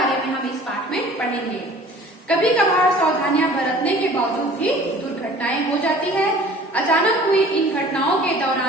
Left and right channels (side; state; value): both; normal; correlation 0.48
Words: में हम इस पाठ में पढ़ेंगे। कभी कभार सावधानियां बरतने के बावजूद भी दुर्घटनाएं हो जाती है। अचानक हुई इन घटनाओं के